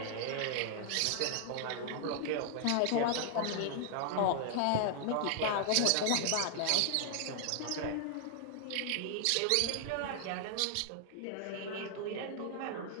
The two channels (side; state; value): both; different; correlation -0.01